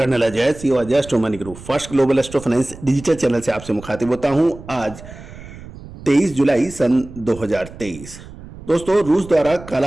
Ajay CO Ajay astro money group first global astro finance digital channel से आपसे मुखातिब होता हूं। आज 23 जुलाई सन 2023। दोस्तों, रूस द्वारा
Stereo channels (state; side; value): noise; right; rumble, 16 dB below the sound